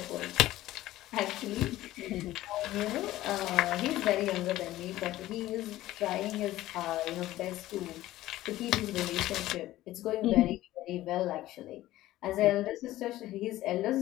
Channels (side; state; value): right; quieter; 15.6 dB